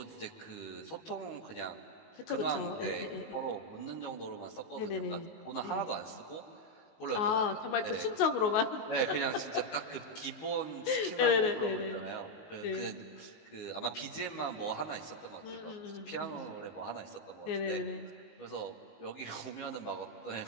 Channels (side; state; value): right; late; 19 ms